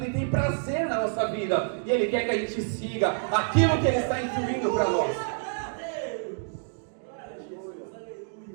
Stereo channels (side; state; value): left; silent; digital silence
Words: e tem prazer na nossa vida, e Ele quer que a gente siga aquilo que Ele está instruindo para nós.